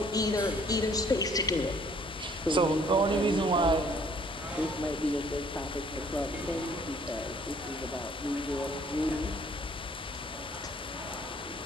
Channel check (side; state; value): both; normal; correlation 0.59